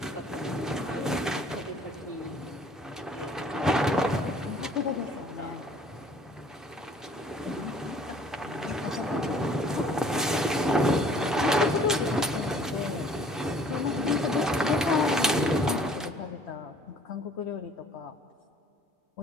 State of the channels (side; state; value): both; normal; correlation 0.55